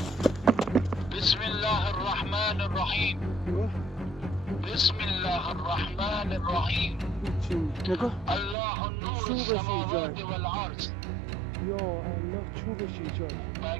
بسم الله الرحمن الرحیم. بسم الله الرحمن الرحیم. نگاه. الله نور السماوات والارض. یا الله چوبش ایجاد.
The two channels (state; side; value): drops out; left; at 8.6 s